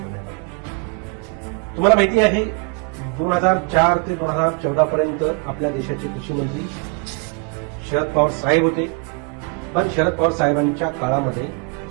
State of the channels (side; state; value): left; quieter; 32.1 dB